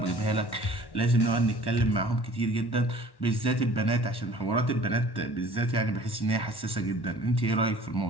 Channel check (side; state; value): right; late; 1.1 ms